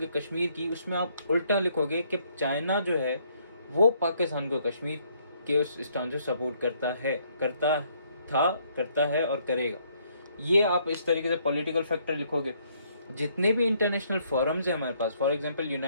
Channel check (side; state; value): both; inverted; correlation -0.68